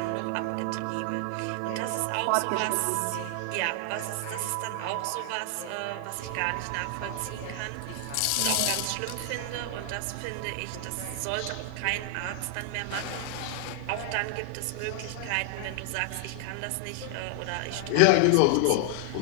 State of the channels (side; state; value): both; different; correlation 0.00